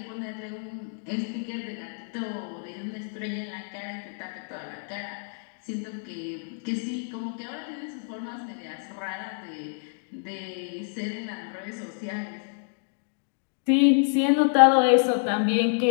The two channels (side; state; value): right; silent; digital silence